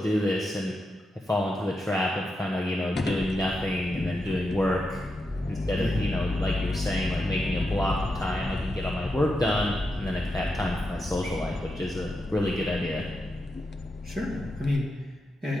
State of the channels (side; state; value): both; normal; correlation 0.86